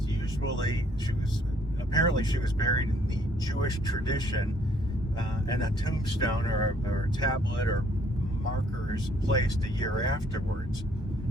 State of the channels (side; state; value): both; normal; correlation 0.64